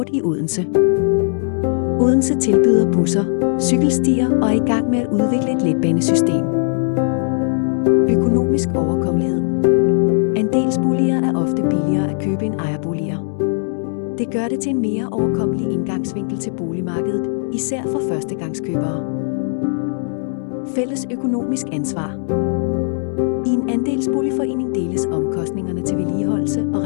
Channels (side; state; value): right; silent; digital silence